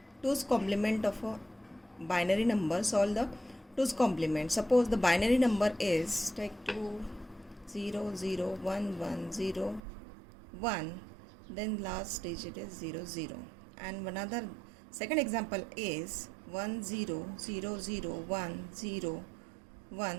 2's complement of a binary number. Solve the 2's complement. Suppose the binary number is take 2 0 0 1 1 0 1, then last digit is 0 0, and another second example is 1 0 0 0 1 0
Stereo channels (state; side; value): drops out; left; at 9.8 s